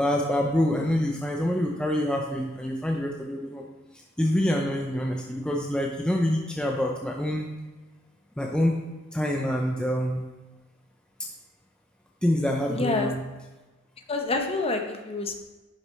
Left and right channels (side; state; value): both; normal; correlation 0.77